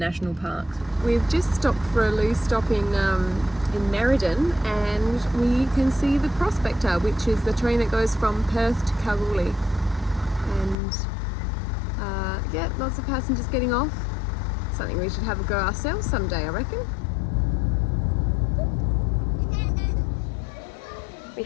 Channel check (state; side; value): drops out; right; at 10.8 s